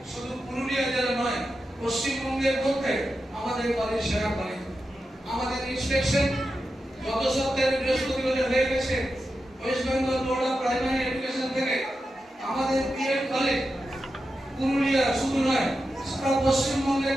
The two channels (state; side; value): normal; both; correlation 0.90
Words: শুধু পুরুলিয়া জেলা নয়, পশ্চিমবঙ্গের মধ্যে আমাদের কলেজ সেরা কলেজ। আমাদের ইন্সপেকশন গত সপ্তাহে বৃহস্পতিবার হয়ে গেছে West Bengal board of primary education থেকে। আমাদের বিএড কলেজ পুরুলিয়া শুধু নয়, সারা পশ্চিমবঙ্গের